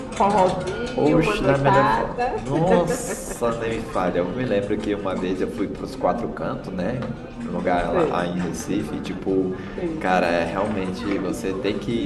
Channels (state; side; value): identical; both; correlation 1.00